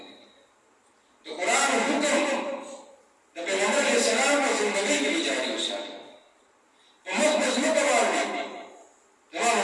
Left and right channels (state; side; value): identical; both; correlation 1.00